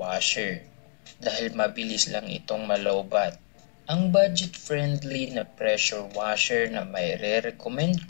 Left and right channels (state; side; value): silent; right; 60 dB below the other